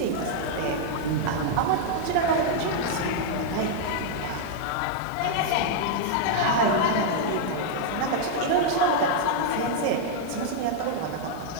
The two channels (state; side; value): different; both; correlation 0.00